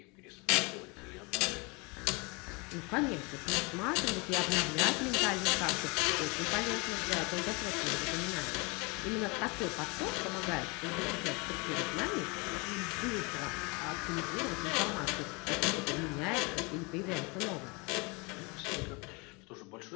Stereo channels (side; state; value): right; quieter; 28.9 dB